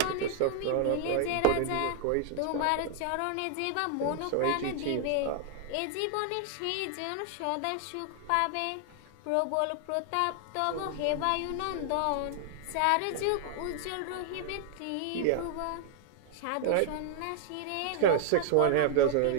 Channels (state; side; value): different; both; correlation 0.00